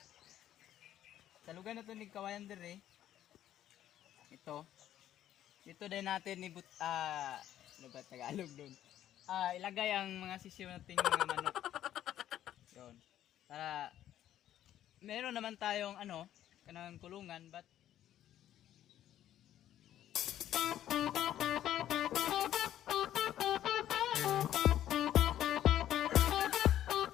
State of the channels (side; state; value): right; quieter; 11.8 dB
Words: Salugan na to ni kawayan dire. Ito. Ito din natin ibut ano ba Tagalog doon? Ilagay ang mga sisiw nating mga manok. Yun. Para meron naman tayong kanang kulungan but